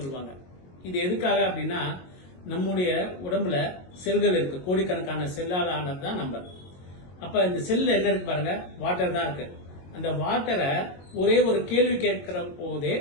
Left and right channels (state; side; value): late; right; 22 ms